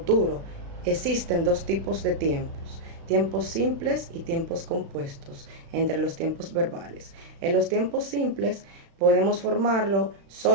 Existen dos tipos de tiempos: tiempos simples y tiempos compuestos entre los tiempos verbales. En los tiempos simples podemos formarlo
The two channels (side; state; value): left; late; 36 ms